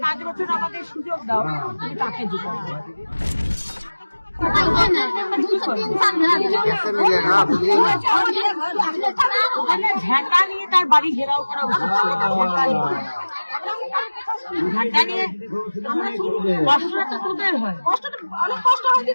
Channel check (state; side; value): inverted; both; correlation -1.00